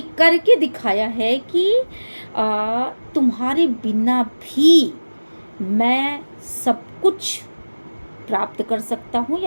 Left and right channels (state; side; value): inverted; both; correlation -1.00